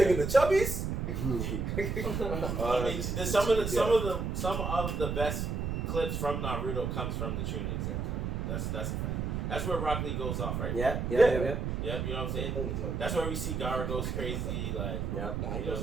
the chubbies? I mean, some of the best clips from Naruto comes from the Chunin exam. That's a fact. That's where Rock Lee goes off, right? Yep. Yep, you know what I'm saying? That's where we see Gara goes crazy, like. Yep. He goes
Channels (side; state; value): right; noise; rumble, 2 dB below the sound